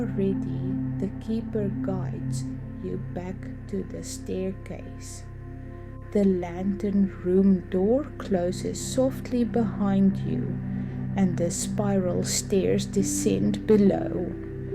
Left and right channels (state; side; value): identical; both; correlation 1.00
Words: ready, the keeper guides you back to the staircase. The lantern room door closes softly behind you, and the spiral stairs descend below.